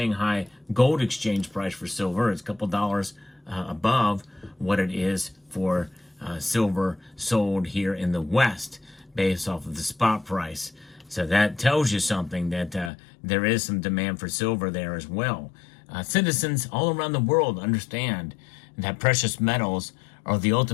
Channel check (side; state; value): right; drops out; at 12.9 s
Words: gold exchange price for silver is a couple dollars above what it is for silver sold here in the West based off of the spot price. So that tells you something, that there is some demand for silver there as well. Citizens all around the world understand that precious metals are the